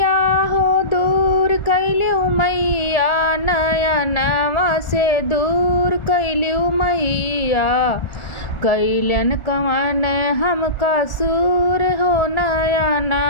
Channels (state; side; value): late; right; 1.4 ms